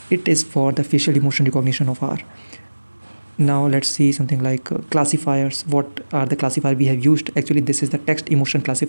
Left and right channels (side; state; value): both; inverted; correlation -1.00